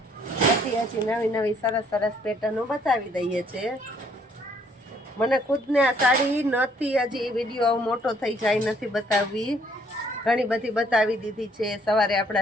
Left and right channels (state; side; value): normal; both; correlation 0.65